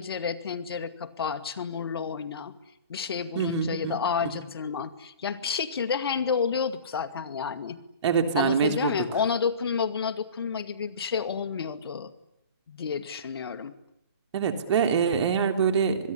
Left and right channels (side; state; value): both; inverted; correlation -0.38